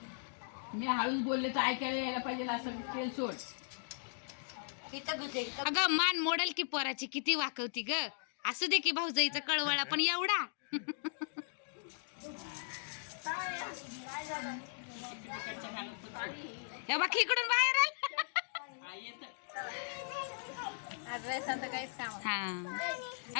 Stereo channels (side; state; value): right; silent; digital silence